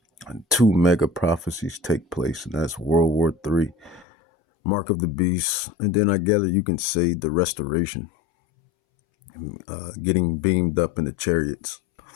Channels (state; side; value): drops out; right; at 4.0 s